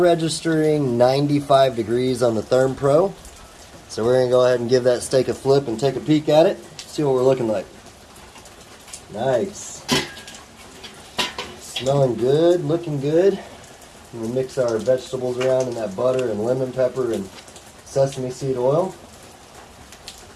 95 degrees on the Therm Pro. So we're going to go ahead and give that steak a flip and take a peek at it. See what we're looking like. Nice. Smelling good, looking good. We'll mix our vegetables around in that butter and lemon pepper and sesame seed oil.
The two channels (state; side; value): identical; both; correlation 1.00